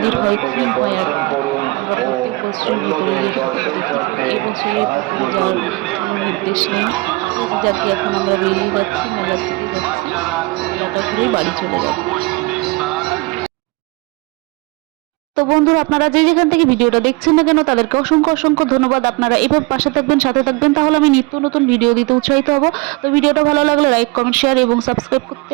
হয় খুব হয় আর কি, পরবর্তী বছর এই বছরে যাওয়ার নির্দেশ নেই, যাতে এখন আমরা বেরিয়ে যাচ্ছি, মেলা থেকে যাচ্ছি, মেলাটা ঘুরেই বাড়ি চলে যাবো। তো বন্ধুরা, আপনারা যে যেখান থেকে ভিডিওটা দেখছেন না কেন তাদেরকে অসংখ্য ধন্যবাদ। আপনারা এভাবে পাশে থাকবেন, সাথে থাকবেন, তাহলে আমি নিত্য নতুন ভিডিও দিতে উৎসাহিত হব। তো ভিডিওটা ভালো লাগলে লাইক, কমেন্ট, শেয়ার এবং সাবস্ক্রাইব করতে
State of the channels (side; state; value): left; quieter; 24.7 dB